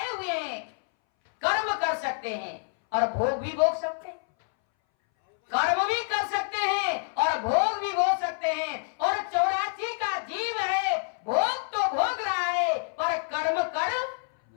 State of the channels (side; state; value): right; silent; 60 dB below the other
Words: हुए हैं, कर्म कर सकते हैं और भोग भी भोग सकते हैं। कर्म भी कर सकते हैं और भोग भी भोग सकते हैं। और 84 का जीव है, भोग तो भोग रहा है पर कर्म कर